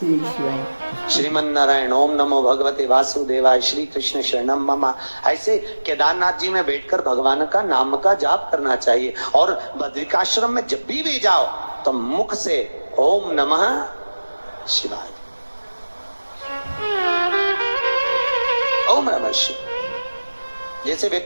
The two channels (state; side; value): inverted; both; correlation -1.00